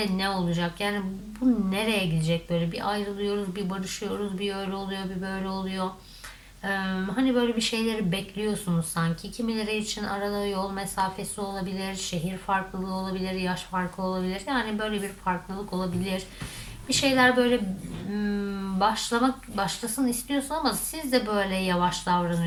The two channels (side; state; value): both; identical; correlation 1.00